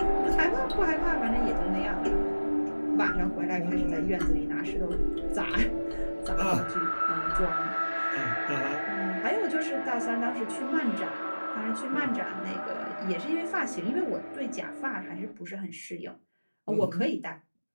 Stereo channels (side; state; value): both; inverted; correlation -1.00